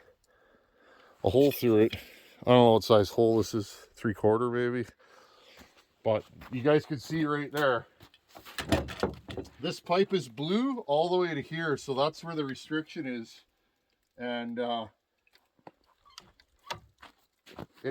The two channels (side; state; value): both; identical; correlation 1.00